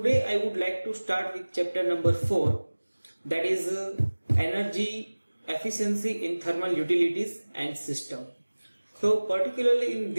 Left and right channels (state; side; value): inverted; both; correlation -1.00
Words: I would like to start with chapter number 4, that is energy efficiency in thermal utilities and system. So particularly in